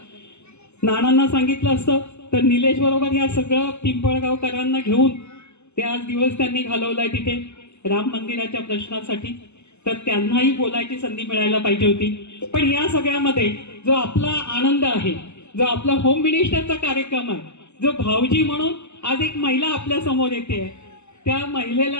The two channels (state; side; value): late; right; 0.82 ms